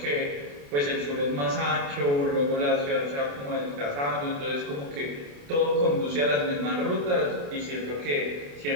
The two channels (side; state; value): left; late; 28 ms